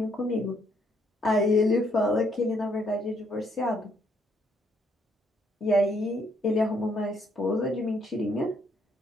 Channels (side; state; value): both; normal; correlation 0.71